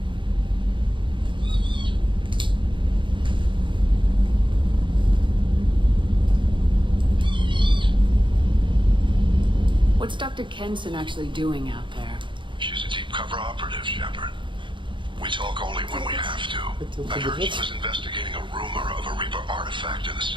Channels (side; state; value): left; late; 0.24 ms